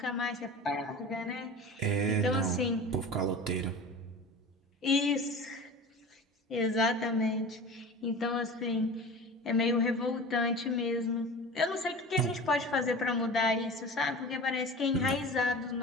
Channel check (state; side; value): normal; both; correlation 0.35